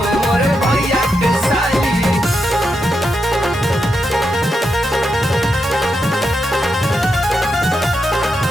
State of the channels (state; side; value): normal; both; correlation 0.85